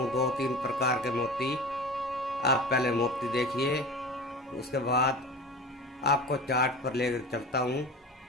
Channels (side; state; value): both; normal; correlation 0.34